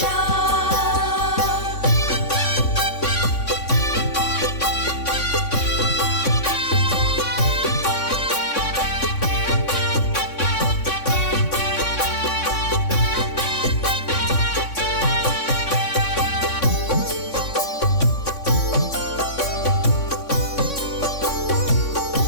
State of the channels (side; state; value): right; late; 3.6 ms